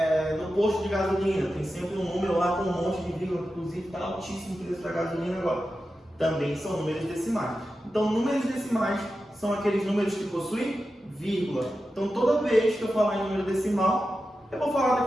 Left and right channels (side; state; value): both; normal; correlation 0.91